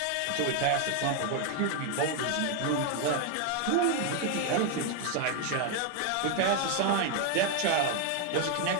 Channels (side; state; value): both; different; correlation 0.01